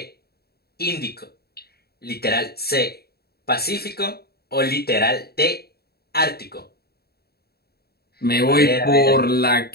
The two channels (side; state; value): right; late; 0.46 ms